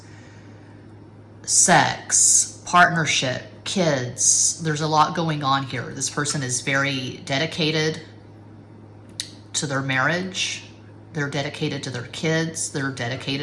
sex, partnership, kids. There's a lot going on here. This person is very dedicated to their marriage. They're dedicated to their kids. They're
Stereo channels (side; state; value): both; identical; correlation 1.00